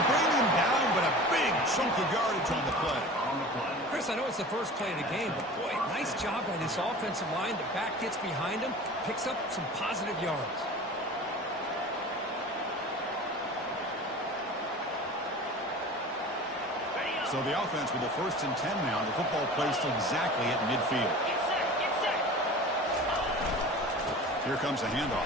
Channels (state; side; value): normal; both; correlation 0.38